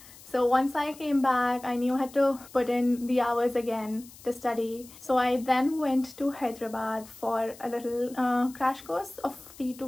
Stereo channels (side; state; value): left; noise; hiss, 20 dB below the sound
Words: So once I came back, I knew I had to put in the hours again to study. So I then went to Hyderabad for a little crash course of 3 to